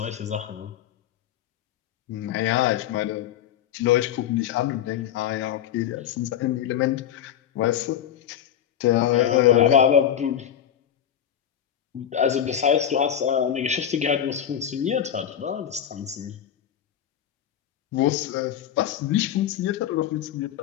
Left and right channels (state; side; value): quieter; right; 9.9 dB